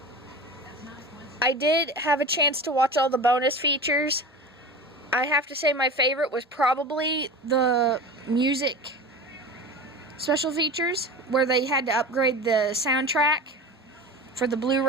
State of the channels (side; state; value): both; normal; correlation 0.31